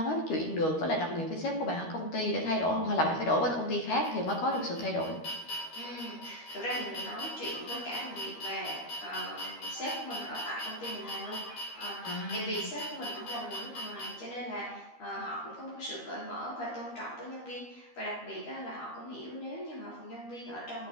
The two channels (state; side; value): late; right; 13 ms